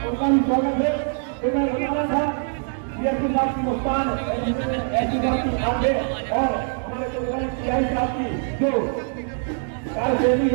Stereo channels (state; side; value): silent; left; 57 dB below the other